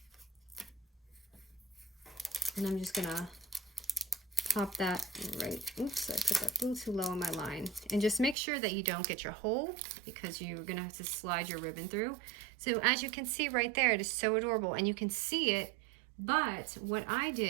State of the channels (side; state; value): left; drops out; at 8.3 s